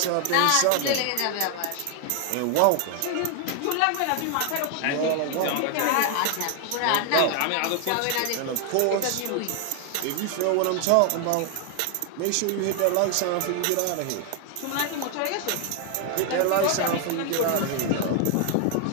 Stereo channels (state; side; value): different; both; correlation 0.00